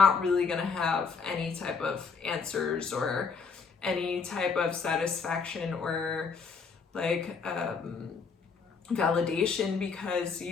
really gonna have any type of answers or any type of satisfaction or like validation, because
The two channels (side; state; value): right; quieter; 5.2 dB